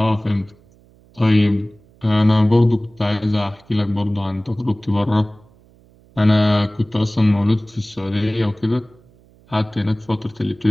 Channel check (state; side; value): noise; right; hum, 29 dB below the sound